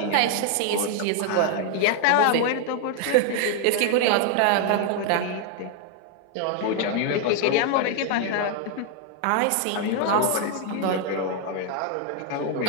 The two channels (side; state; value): both; different; correlation 0.00